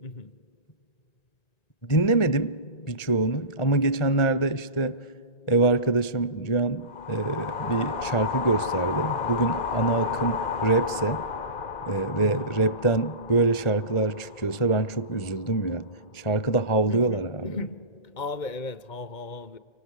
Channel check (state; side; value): late; right; 1.4 ms